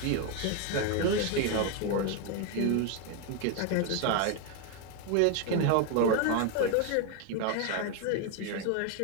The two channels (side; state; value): both; different; correlation 0.01